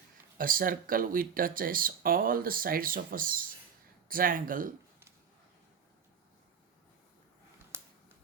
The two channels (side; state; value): left; quieter; 7.0 dB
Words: a circle which touches all the sides of a triangle